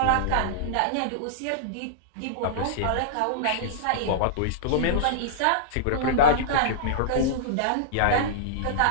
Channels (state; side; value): different; both; correlation -0.02